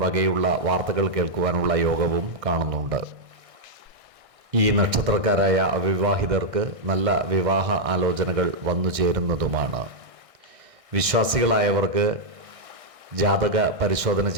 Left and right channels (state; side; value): late; left; 1.6 ms